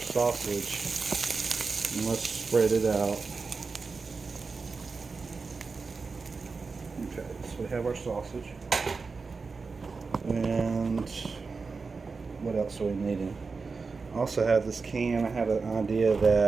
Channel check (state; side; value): quieter; left; 4.5 dB